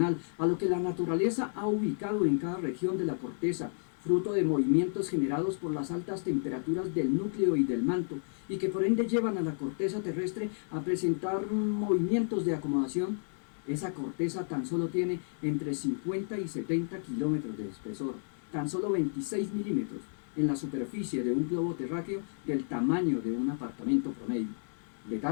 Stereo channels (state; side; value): silent; right; digital silence